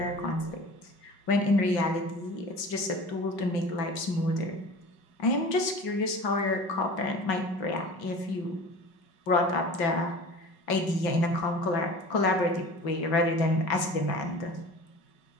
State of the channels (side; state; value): right; late; 5.3 ms